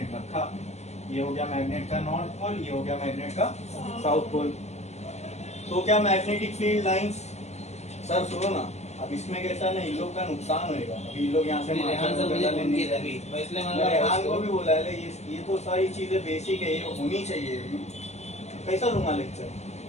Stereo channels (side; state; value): right; late; 0.32 ms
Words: रखा, ये हो गया मैग्नेट का नॉर्थ पोल, ये हो गया मैग्नेट का साउथ पोल। तो क्या मैग्नेटिक फील्ड लाइंस, सर सुनो ना, अब इसमें कैसा ना इन लोग का नुकसान होएगा, अभी इन लोग यहाँ से रेहान को भी बोला है, ये तो सारी चीजें बेसिक है, ये होनी चाहिए, कैसा लूंगा लेक्चर,